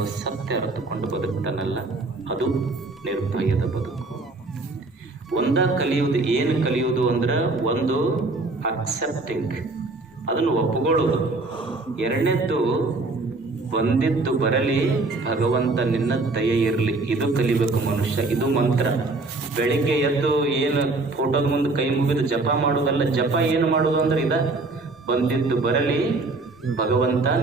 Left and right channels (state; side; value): quieter; left; 3.3 dB